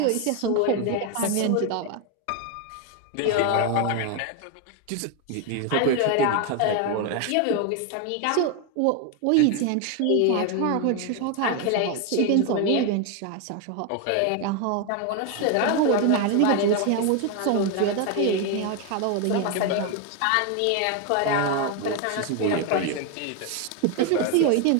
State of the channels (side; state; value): both; different; correlation 0.01